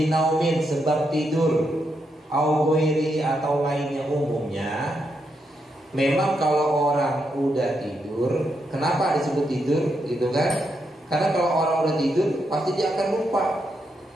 sebab tidur, au ghairi atau lainnya. Umumnya memang kalau orang udah tidur, kenapa disebut tidur gitu kan? Karena kalau orang udah tidur pasti dia akan lupa.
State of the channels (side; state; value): both; normal; correlation 0.81